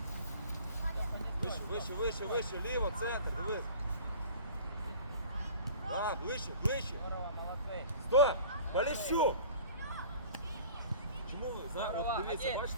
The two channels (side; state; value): both; inverted; correlation -0.44